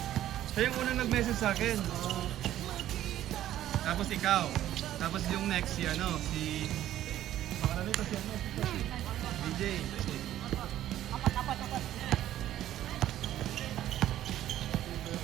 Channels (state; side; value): quieter; left; 12.7 dB